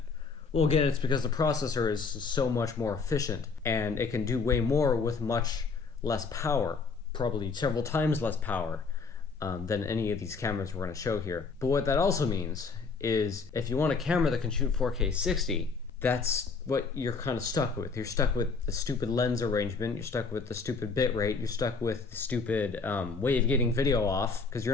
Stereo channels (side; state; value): right; quieter; 4.7 dB